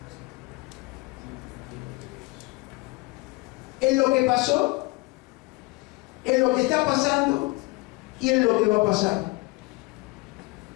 ¿En lo que pasó? ¿En lo que está pasando? ¿Y en lo que va a pasar?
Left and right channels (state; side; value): quieter; right; 24.0 dB